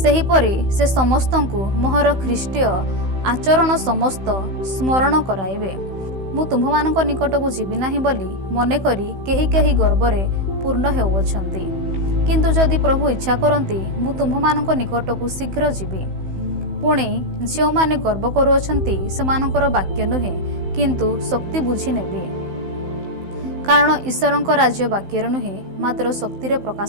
ସେହିପରି ସେ ସମସ୍ତଙ୍କୁ ମୋହର ଖ୍ରୀଷ୍ଟୀୟ ଆଚରଣ ସମସ୍ତ ସ୍ମରଣ କରାଇବେ। ମୁଁ ତୁମ୍ଭମାନଙ୍କ ନିକଟକୁ ଯିବି ନାହିଁ ବୋଲି ମନେକରି କେହି କେହି ଗର୍ବରେ ପୂର୍ଣ୍ଣ ହେଉଅଛନ୍ତି। କିନ୍ତୁ ଯଦି ପ୍ରଭୁ ଇଚ୍ଛା କରନ୍ତି, ମୁଁ ତୁମ୍ଭମାନଙ୍କ ନିକଟକୁ ଶୀଘ୍ର ଯିବି। ପୁଣି ଯେଉଁମାନେ ଗର୍ବ କରୁଅଛନ୍ତି, ସେମାନଙ୍କର ବାକ୍ୟ ନୁହେଁ, କିନ୍ତୁ ଶକ୍ତି ବୁଝି ନେବି। କାରଣ ଈଶ୍ୱରଙ୍କ ରାଜ୍ୟ ବାକ୍ୟରେ ନୁହେଁ, ମାତ୍ର ଶକ୍ତିରେ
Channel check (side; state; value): left; late; 16 ms